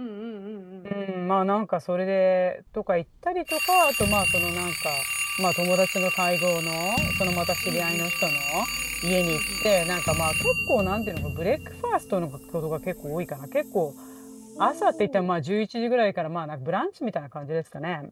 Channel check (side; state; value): both; identical; correlation 1.00